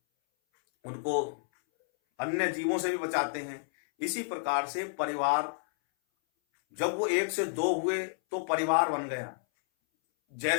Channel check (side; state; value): right; silent; 58 dB below the other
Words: उनको अन्य जीवों से भी बचाते हैं। इसी प्रकार से परिवार, जब वो 1 से 2 हुए तो परिवार बन गया,